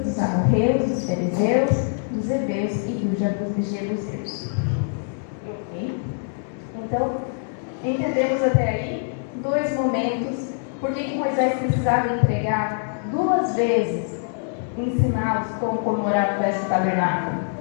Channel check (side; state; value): right; silent; 63 dB below the other